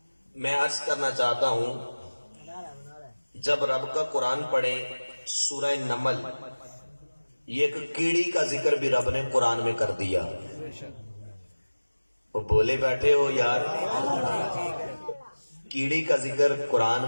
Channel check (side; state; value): both; inverted; correlation -1.00